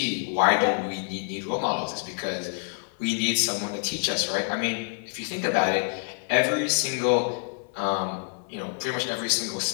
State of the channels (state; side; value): silent; right; 58 dB below the other